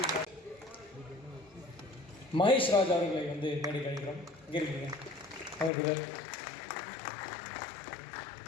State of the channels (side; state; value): right; drops out; at 5.7 s